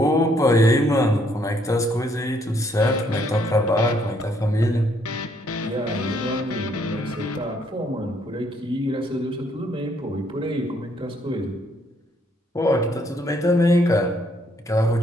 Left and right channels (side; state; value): both; normal; correlation 0.69